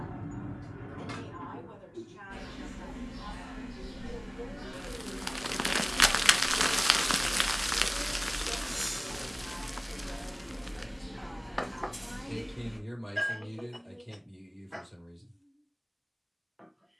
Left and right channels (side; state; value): both; identical; correlation 1.00